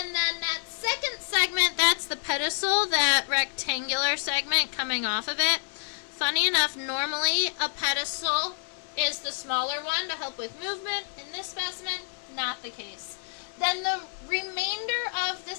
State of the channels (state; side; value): silent; right; 56 dB below the other